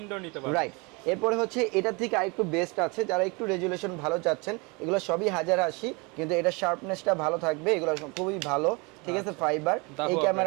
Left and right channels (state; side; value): quieter; left; 28.7 dB